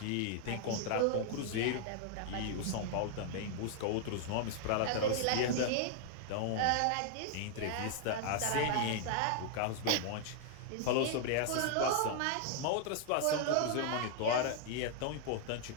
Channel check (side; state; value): both; different; correlation -0.01